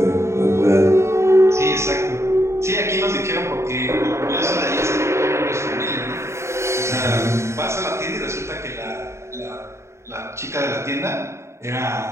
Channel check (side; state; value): left; late; 0.13 ms